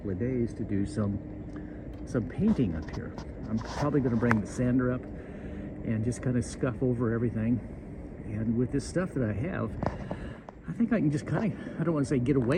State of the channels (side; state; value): both; identical; correlation 1.00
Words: of days to do some painting up here. I'm probably going to bring the sander up and just kind of scuff over everything. And with this stuff that I have, I think I can just kind of, I don't want to say get